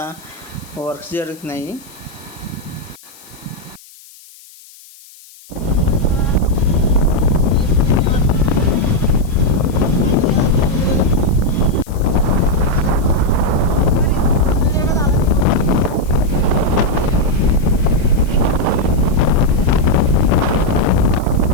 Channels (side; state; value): left; noise; hiss, 23 dB below the sound